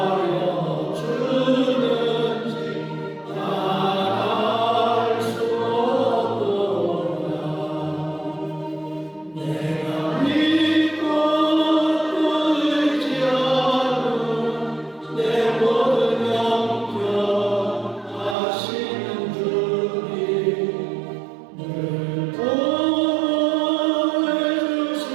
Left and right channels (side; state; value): left; drops out; at 18.4 s